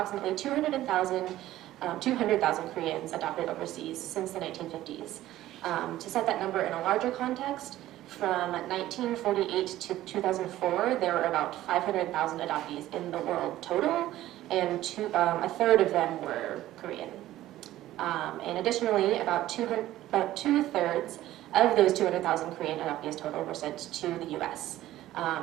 200,000 Koreans adopted overseas since the 1950s. To set that number in a larger context, from 1948 to 2004, there were about 500,000 adoptees in the world total, and a third of them were Korean. And additionally, about two-thirds of those 200,000 Korean adoptees total were sent to the US.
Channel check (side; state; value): left; quieter; 14.6 dB